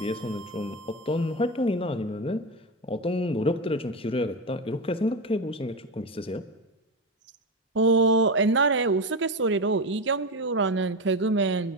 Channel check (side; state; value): both; normal; correlation 0.16